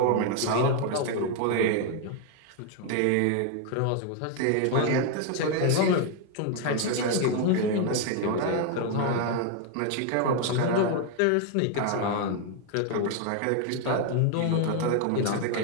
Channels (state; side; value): different; both; correlation 0.01